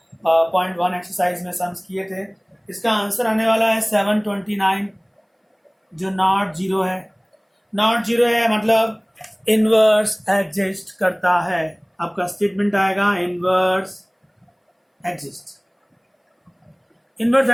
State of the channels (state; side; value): identical; both; correlation 1.00